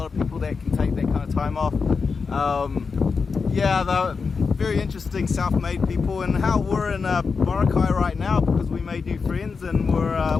of people that can take that kind of time off. Yeah, they're very interesting self-made people, and how we're in Boracay right now because we made new friends, and we're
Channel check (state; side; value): quieter; right; 5.0 dB